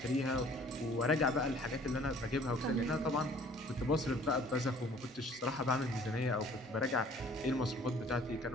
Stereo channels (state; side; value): normal; both; correlation 0.54